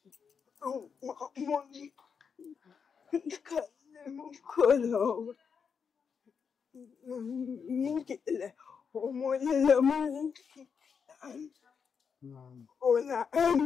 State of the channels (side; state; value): right; quieter; 6.3 dB